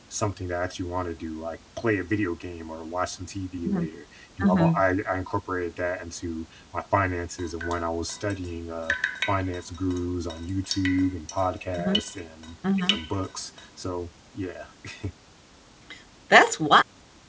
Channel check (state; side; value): identical; both; correlation 1.00